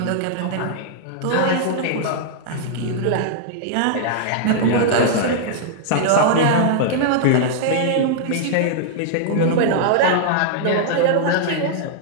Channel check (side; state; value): both; different; correlation -0.01